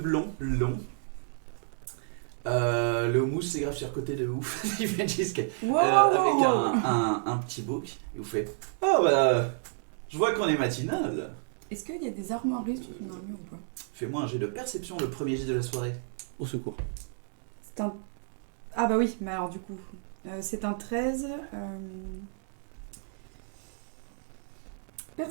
longs. Le houmous c'est grave sur côté de ouf. Il fait jusqu'à avec un petit bouc. Et vous fait oh bah je vois qu'on est matinal. Est-ce qu'il y a des armoiries sur ton armure ou pas? Fais-moi un jet de perception, le premier jet de la soirée. Au secours. C'est un... Ah bah oui, mais alors du coup... c'est un 13...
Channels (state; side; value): silent; left; digital silence